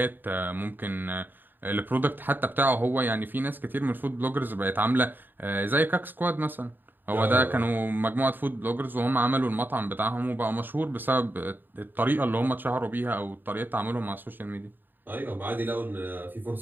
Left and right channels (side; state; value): left; late; 0.092 ms